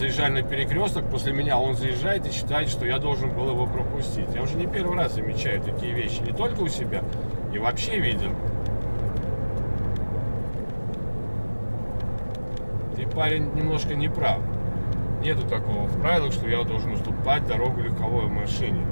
на перекресток, после меня он заезжает и считает, что я должен был его пропустить. Я уже не первый раз замечаю такие вещи, не только у себя, и вообще видел. Ты, парень, немножко не прав. Нету такого в правилах, что я должен уступать дорогу легковой машине,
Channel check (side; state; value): both; inverted; correlation -1.00